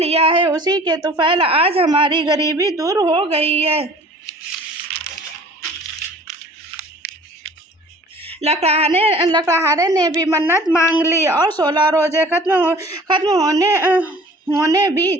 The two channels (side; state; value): both; normal; correlation 0.48